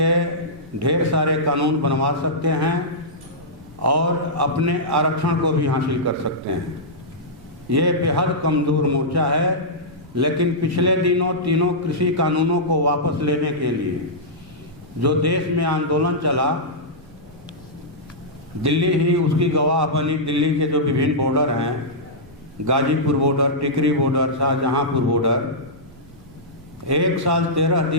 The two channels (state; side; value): noise; right; rumble, 24 dB below the sound